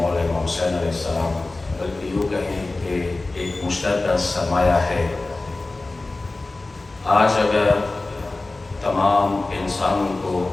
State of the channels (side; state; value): right; quieter; 3.2 dB